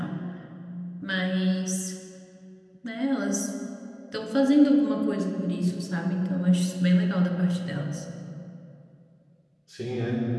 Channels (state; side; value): identical; both; correlation 1.00